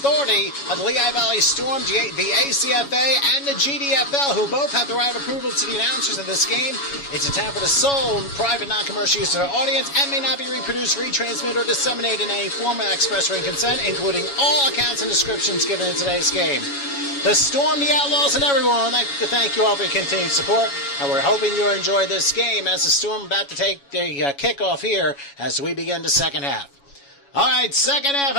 of the Lehigh Valley Storm, the ACFA, and the GDFL, who both have the right of approval to the announcers of this game. It's intended for the sole private non-commercial use of the audience and may not be reproduced, retransmitted, or disseminated in any form without express written consent, including all accounts and descriptions given in today's game. The Storm, the Outlaws, and everyone, I'd like to thank you all for your continued support, and we're hoping you enjoy this game as the Storm about to take the kickoff here as we begin the second half. All right, second half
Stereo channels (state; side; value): late; right; 7.1 ms